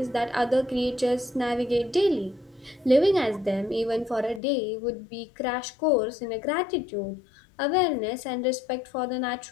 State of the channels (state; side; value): drops out; right; at 4.4 s